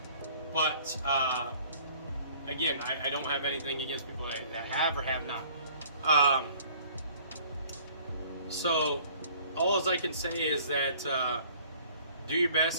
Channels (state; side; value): inverted; both; correlation -0.53